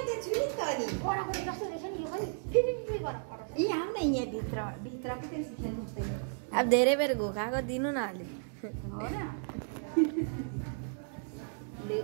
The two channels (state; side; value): silent; left; digital silence